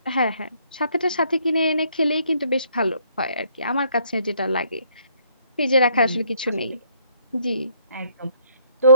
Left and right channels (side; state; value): both; inverted; correlation -0.66